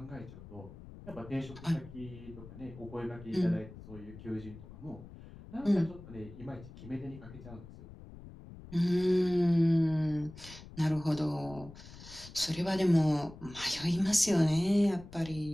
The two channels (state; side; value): noise; left; rumble, 16 dB below the sound